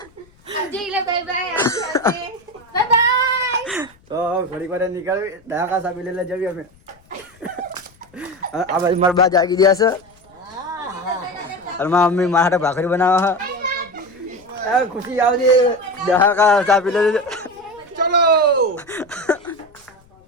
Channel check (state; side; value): noise; left; rumble, 30 dB below the sound